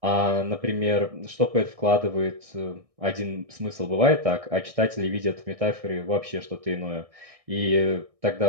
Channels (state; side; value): late; left; 1.6 ms